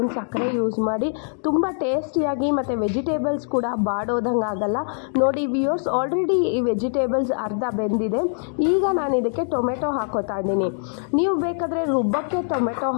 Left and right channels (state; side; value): silent; right; digital silence